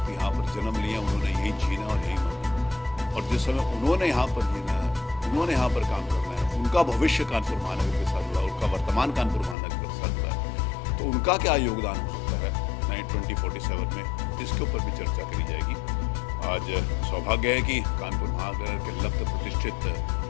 यहाँ पर जन्म लिए हैं, उन्होंने यही जीना और यही मरना। और जिस समय उन्होंने यहाँ पर जीना है, उन्होंने यहाँ पर काम करना है, उनका भविष्य कानपुर महानगर के साथ जुड़ा, उनका वर्तमान कानपुर महानगर के साथ जुड़ा है, तो उनका क्या योगदान हो सकता है 2047 में, इसके ऊपर भी चर्चा करी जाएगी। आज सौभाग्य है कि कानपुर महानगर के लब्ध प्रतिष्ठित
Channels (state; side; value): drops out; right; at 9.6 s